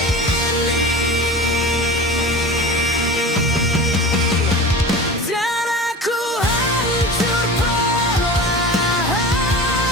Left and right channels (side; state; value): both; normal; correlation 0.34